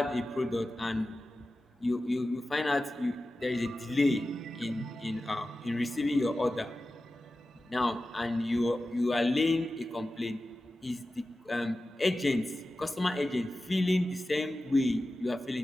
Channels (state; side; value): normal; both; correlation 0.94